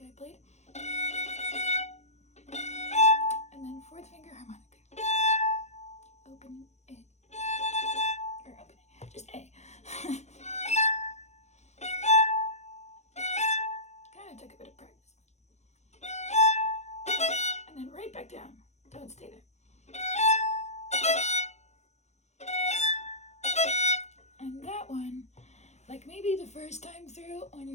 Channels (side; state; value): right; late; 0.33 ms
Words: I played, and then fourth finger harmonic. Open A, or open A, just A. Kind of took a bit of practice. And then right back down, don't stay there. And that one, like maybe the first time through when